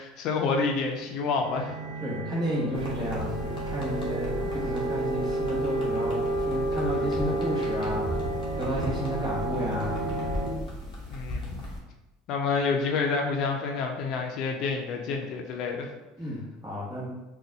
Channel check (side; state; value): both; normal; correlation 0.47